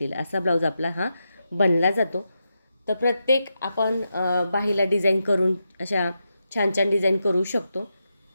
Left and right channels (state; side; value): inverted; both; correlation -0.86